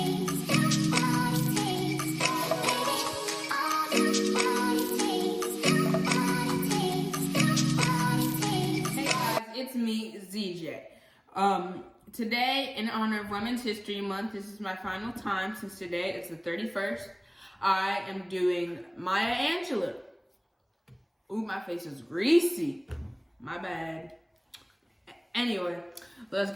me, ZJ. Today, in honor of Women's History Month, this is my final time since today is the 31st. I am doing Maya Angelou. Ooh, my face is greasy. My bad. Anyway, let's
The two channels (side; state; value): both; identical; correlation 1.00